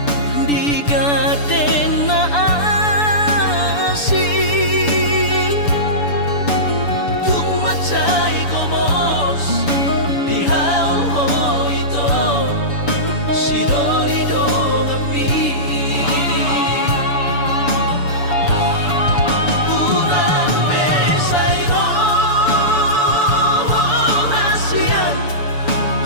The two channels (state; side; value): late; right; 6.9 ms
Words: di gaden na asih tumacay komos di haul ho ito si dolido kami pulang besayro hasian